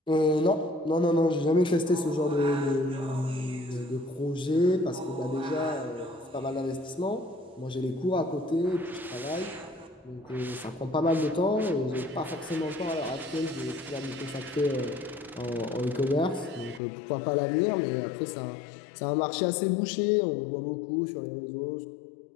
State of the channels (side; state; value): right; drops out; at 16.8 s